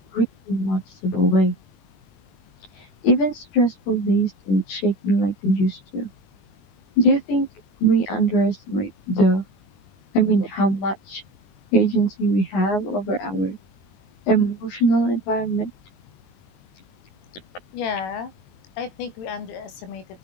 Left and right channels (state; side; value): late; right; 21 ms